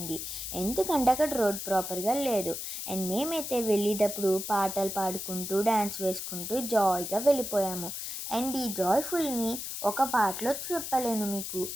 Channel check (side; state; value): left; noise; hiss, 6 dB below the sound